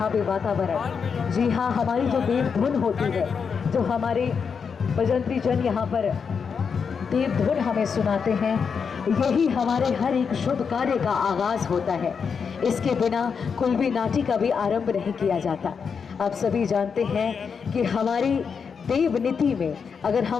पे वातावरण। जी हाँ, हमारी जो देव धुन होती है, जो हमारे बजंत्री जन यहाँ पर देव धुन हमें सुनाते हैं, यही हमारे हर एक शुभ कार्य का आगाज होता है। इसके बिना कोई भी नाटी का भी आरंभ नहीं किया जाता। आप सभी जानते हैं कि हमारी देव नीति में अगर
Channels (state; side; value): quieter; right; 6.1 dB